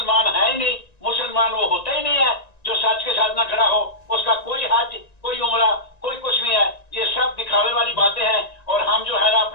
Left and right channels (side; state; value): right; late; 1.9 ms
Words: है ही नहीं। मुसलमान वो होता ही नहीं है जो सच के साथ ना खड़ा हो। उसका कोई हज, कोई उम्रा, कोई कुछ नहीं है। ये सब दिखावे वाली बातें हैं, और हम जो है ना